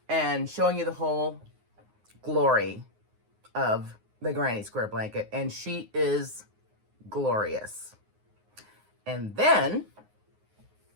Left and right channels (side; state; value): left; late; 9.6 ms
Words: and showing you the whole glory of the Granny Square blanket. And she is glorious. And then